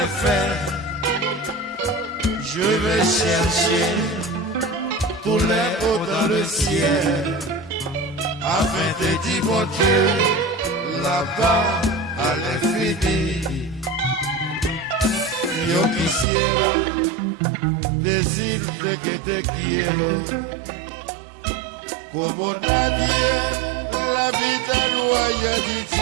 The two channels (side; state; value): left; drops out; at 16.2 s